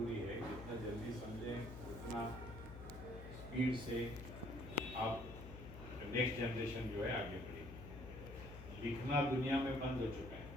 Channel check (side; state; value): left; noise; hum, 11 dB below the sound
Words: है। जितना जल्दी समझें उतना स्पीड से आप नेक्स्ट जनरेशन जो है आगे बढ़ेगी। लिखना दुनिया में बंद हो चुका है,